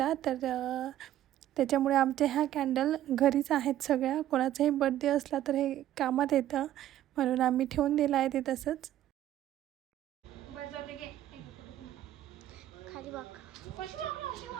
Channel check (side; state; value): left; quieter; 12.7 dB